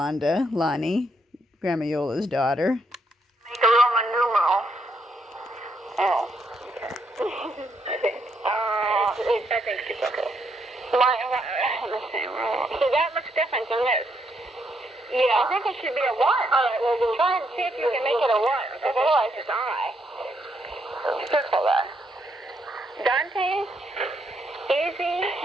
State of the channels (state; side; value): normal; both; correlation 0.75